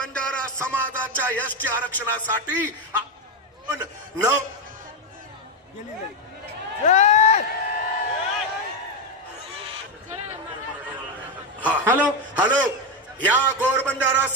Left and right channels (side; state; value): both; normal; correlation 0.08